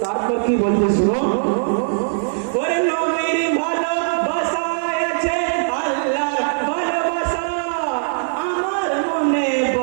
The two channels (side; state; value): left; silent; digital silence